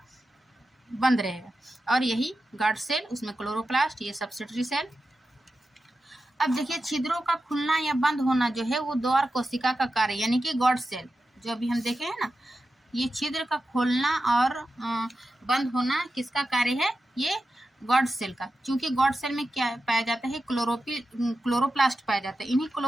बंद रहेगा। और यही गार्ड सेल, उसमें क्लोरोप्लास्ट, ये सब्सिडरी सेल। अब देखिए छिद्रों का खुलना या बंद होना जो है वो द्वार कोशिका का कार्य, यानी कि गॉड सेल जो अभी हम देखे हैं ना, ये छिद्र का खोलना और बंद होना किसका कार्य है, ये गॉड सेल का। क्योंकि गॉड सेल में क्या पाया जाता है, क्लोरोप्लास्ट पाया जाता है। इन्हीं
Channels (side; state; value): both; normal; correlation 0.92